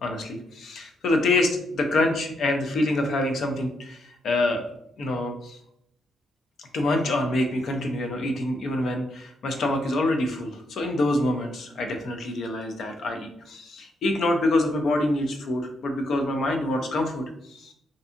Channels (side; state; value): both; normal; correlation 0.78